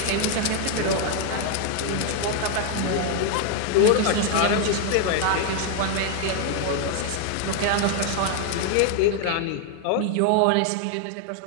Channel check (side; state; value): both; different; correlation 0.00